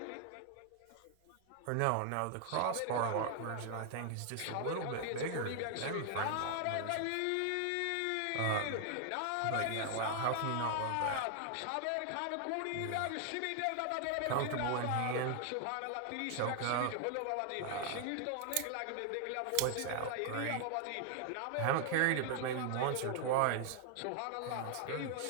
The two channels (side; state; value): both; different; correlation 0.00